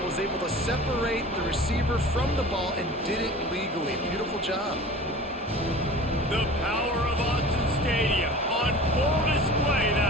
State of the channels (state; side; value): normal; both; correlation 0.40